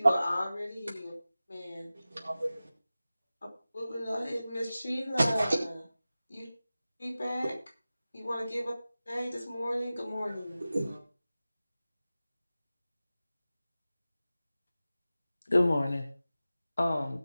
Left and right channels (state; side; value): inverted; both; correlation -0.96